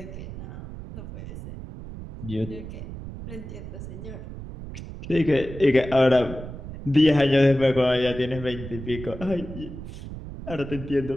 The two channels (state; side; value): noise; right; rumble, 11 dB below the sound